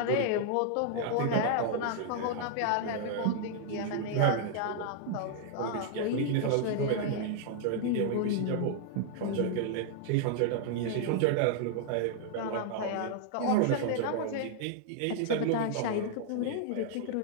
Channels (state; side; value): different; both; correlation -0.01